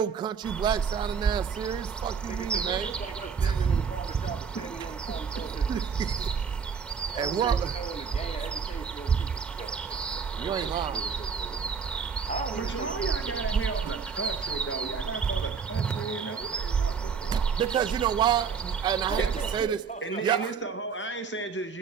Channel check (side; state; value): left; quieter; 6.2 dB